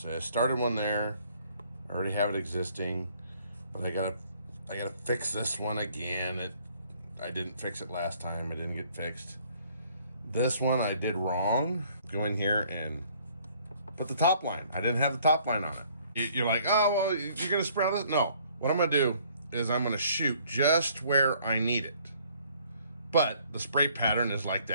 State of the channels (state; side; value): inverted; both; correlation -0.60